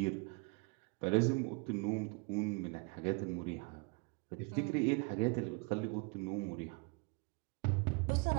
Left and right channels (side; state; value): left; quieter; 32.5 dB